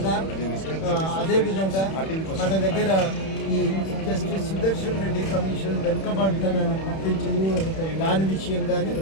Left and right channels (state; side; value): late; right; 31 ms